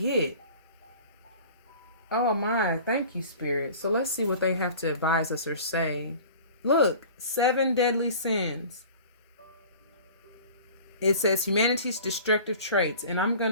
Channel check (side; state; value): both; inverted; correlation -0.44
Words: Oh my, thank you, Spirit. So let's see what they have to advise us or say. Look, 7 deadly sins. It says humanity's destructive traits, and I'm